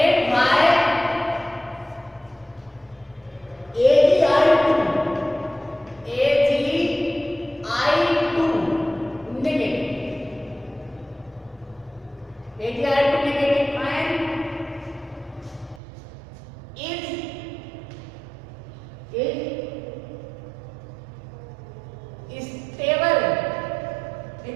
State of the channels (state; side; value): drops out; left; at 15.8 s